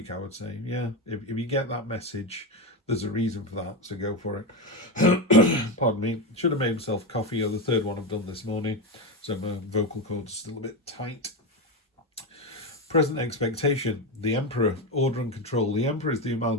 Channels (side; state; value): both; normal; correlation 0.13